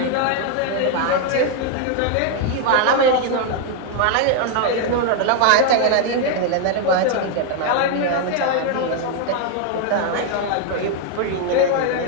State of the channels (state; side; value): different; both; correlation 0.01